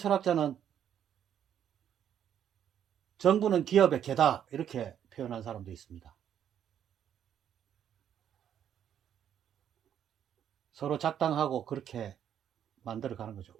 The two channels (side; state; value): left; quieter; 9.6 dB